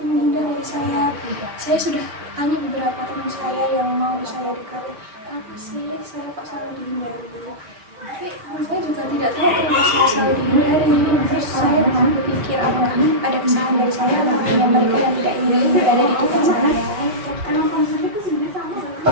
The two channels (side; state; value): left; late; 5.6 ms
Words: menghindar dari saya. Saya sudah tanya beberapa teman saya yang mau saya dekati, kenapa sih saya kok selalu dihindari? Tapi teman saya juga tidak tahu kenapa saya selalu dihindari. Terus saya berpikir apakah ada kesalahan dari saya atau hanya mereka yang tidak ingin berada di dekat saya.